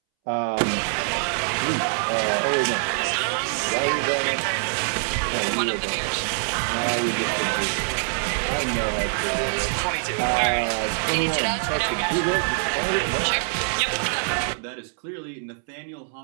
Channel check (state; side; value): silent; left; 62 dB below the other